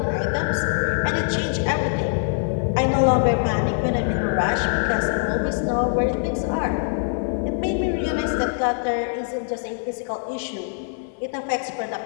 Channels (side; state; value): right; silent; 63 dB below the other